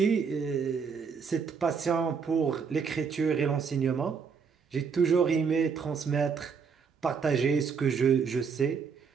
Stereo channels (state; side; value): quieter; left; 6.0 dB